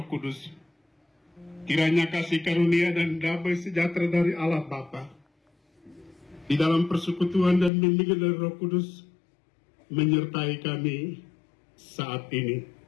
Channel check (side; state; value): right; drops out; at 7.7 s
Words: Kudus. Kiranya kasih karunia dan damai sejahtera dari Allah Bapa di dalam persekutuan dan bimbingan dari Roh Kudus menyertai kami saat ini.